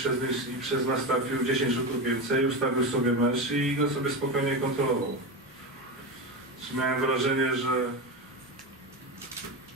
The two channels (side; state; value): both; normal; correlation 0.19